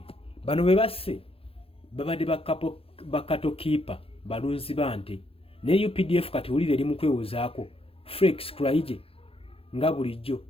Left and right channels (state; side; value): late; right; 0.27 ms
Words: bano be basse babadde bakatokiipa balunzi bante ne UPDF kati wulire eri mu kwewozaako. Felix Kulayigye nga bulijjo